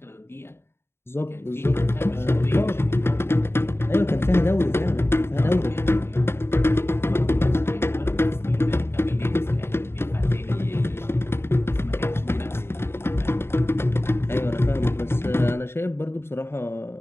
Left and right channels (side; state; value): right; late; 0.12 ms